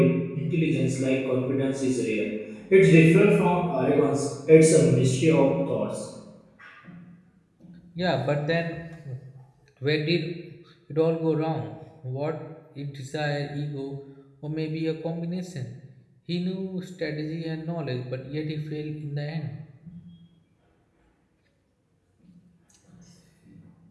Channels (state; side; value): identical; both; correlation 1.00